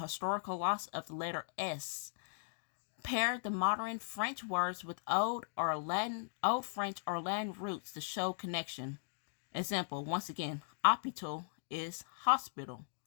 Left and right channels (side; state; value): right; silent; digital silence